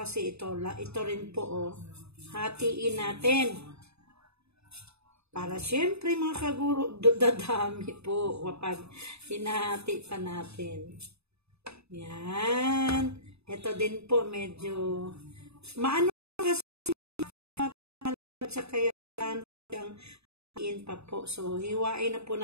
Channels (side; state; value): left; late; 0.79 ms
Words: ito. Ito rin po, oh. Hatiin natin. Para syempre mga kaguro, dadami po kapag hinahati pa natin. Yan. Ito din po medyo maano kasi sa kaya hatiin pa po. So, hiwain na po